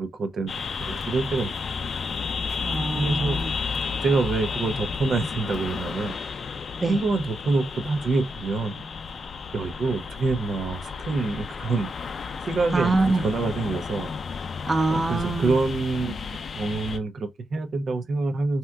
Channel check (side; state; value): both; normal; correlation 0.84